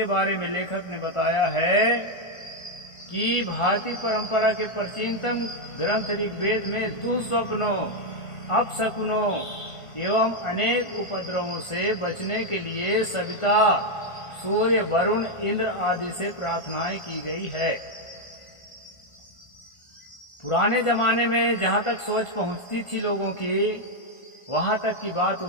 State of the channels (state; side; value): late; right; 1.4 ms